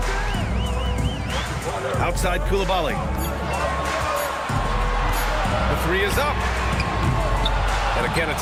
Outside Coulibaly. The 3 is up. And again,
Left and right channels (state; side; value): identical; both; correlation 1.00